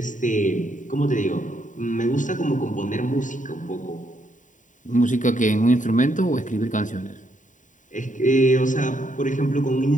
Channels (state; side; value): late; right; 0.37 ms